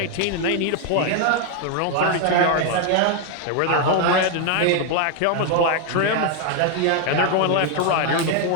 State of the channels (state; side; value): different; both; correlation 0.01